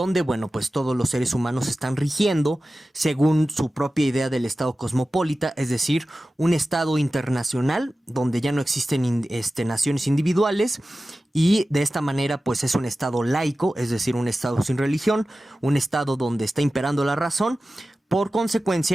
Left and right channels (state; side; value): normal; both; correlation 0.95